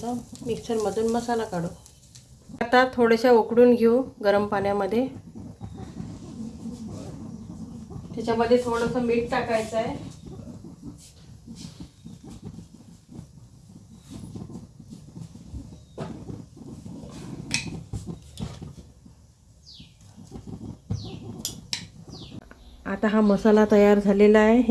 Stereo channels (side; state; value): both; identical; correlation 1.00